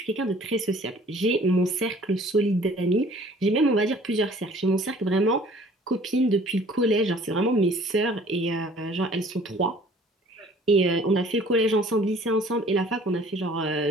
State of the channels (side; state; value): both; normal; correlation 0.52